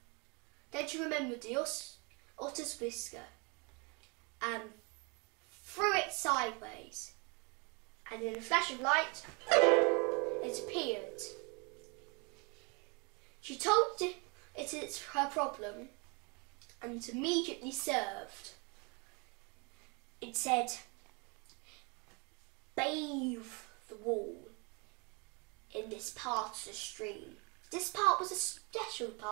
Then she remembered the otter's whisker and threw it sideways, and in a flash of light it appeared. She told it it's her problem and it immediately served. It said, bathe the wall in this part of the stream. This part was a special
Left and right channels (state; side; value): quieter; left; 30.7 dB